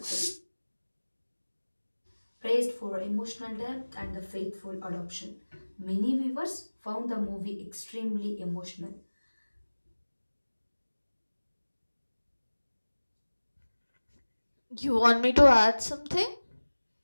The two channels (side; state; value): both; inverted; correlation -1.00